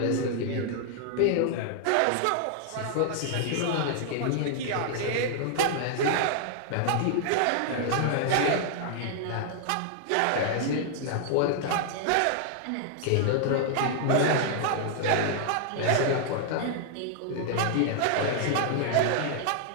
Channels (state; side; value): different; both; correlation -0.01